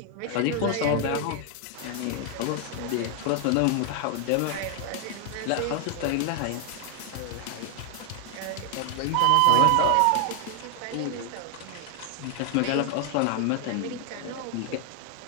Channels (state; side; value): different; both; correlation 0.00